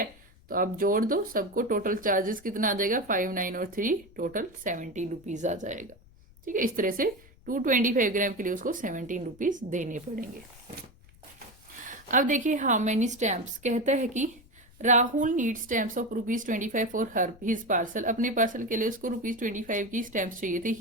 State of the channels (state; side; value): noise; left; rumble, 25 dB below the sound